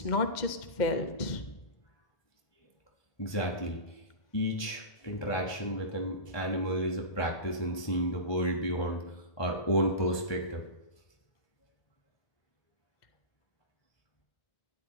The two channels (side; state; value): right; late; 1.2 ms